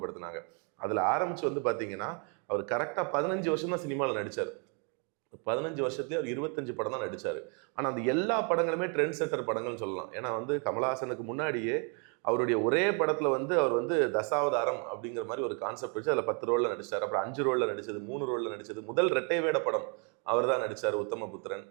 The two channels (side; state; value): left; quieter; 37.9 dB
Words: அதில் ஆரம்பிச்சு வந்து பார்த்தீங்கன்னா, அவர் கரெக்டாக 15 வருஷம் தான் சினிமாவில் நடித்தார். 15 வருஷத்துலேயே அவர் 25 படம் தான் நடித்தார். ஆனால் அந்த எல்லா படங்களுமே ட்ரெண்ட் செட்டர் படங்கள்னு சொல்லலாம். ஏன்னா வந்து கமலஹாசனுக்கு முன்னாடியே அவருடைய ஒரே படத்தில் வந்து அவர் வந்து தசாவதாரம் அப்படிங்கிற மாதிரி ஒரு கான்செப்ட் வச்சு அதில் 10 ரோலில் நடிச்சார். அப்புறம் 5 ரோலில் நடிச்சது, 3 ரோலில் நடிச்சது. முதல் இரட்டை வேட படம் அவர் தான் நடித்தார், உத்தமபுத்திரன்.